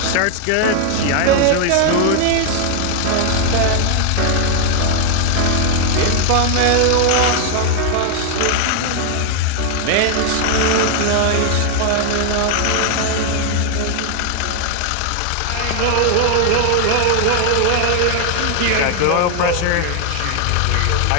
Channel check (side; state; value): both; different; correlation 0.00